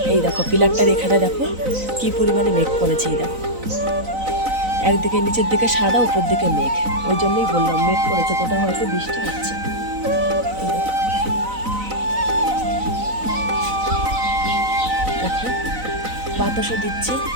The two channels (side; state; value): left; late; 4.0 ms